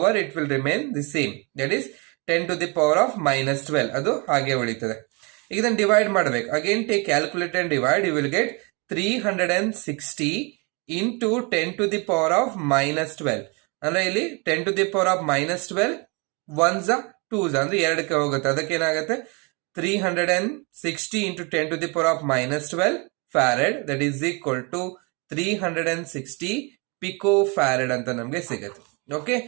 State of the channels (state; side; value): quieter; left; 31.2 dB